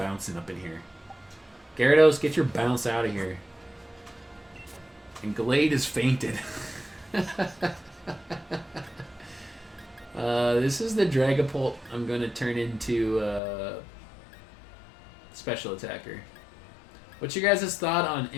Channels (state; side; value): drops out; right; at 13.4 s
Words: up in here. Gyarados, get your bounce out of here. And Glade is fainted. This is the Dragapult I'm going to turn into Special Attacker. What's your guys' thought on